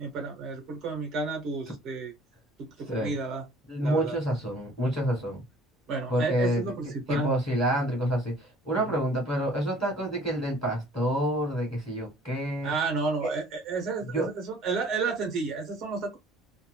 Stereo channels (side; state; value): both; normal; correlation 0.53